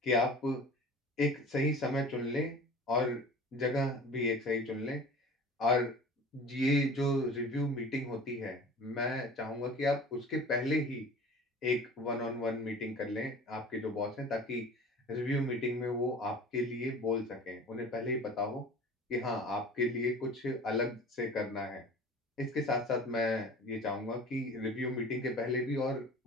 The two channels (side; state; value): both; normal; correlation 0.41